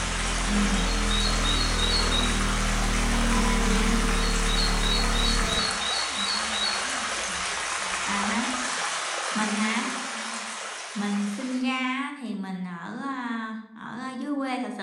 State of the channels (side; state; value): both; identical; correlation 1.00